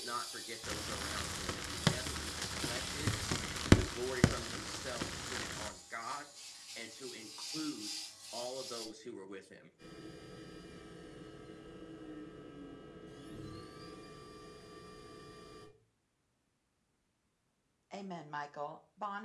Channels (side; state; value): both; identical; correlation 1.00